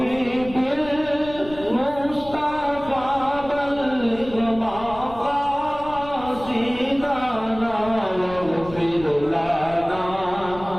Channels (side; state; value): left; noise; rumble, 16 dB below the sound